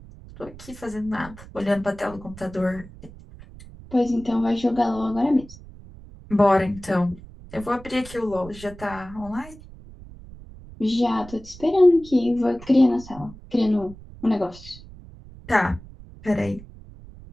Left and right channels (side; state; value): right; noise; rumble, 18 dB below the sound